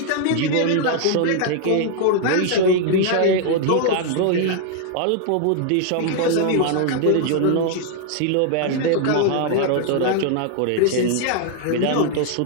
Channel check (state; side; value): different; both; correlation 0.00